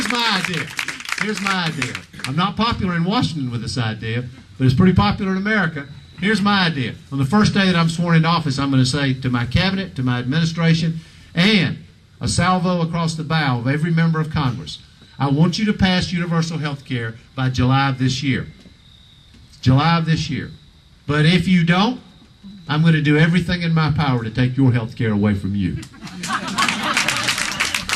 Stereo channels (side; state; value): both; identical; correlation 1.00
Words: my idea. Here's my idea. I'm not popular in Washington with this idea, but it's pretty popular in America. Here's my idea. On the first day that I'm sworn into office, I'm going to say to my cabinet, to my administration, and a salvo across the bow of every member of Congress, I want you to pass universal health care by July of this year. July of this year. But if you don't, I'm going to do everything in my power to take your health care away from you.